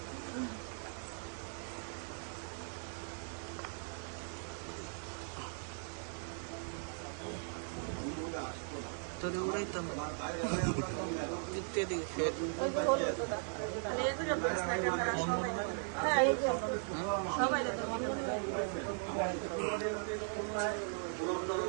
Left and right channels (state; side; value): silent; left; 52 dB below the other